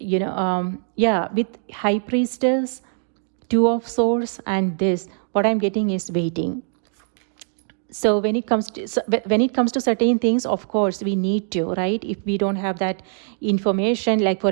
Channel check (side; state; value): left; silent; digital silence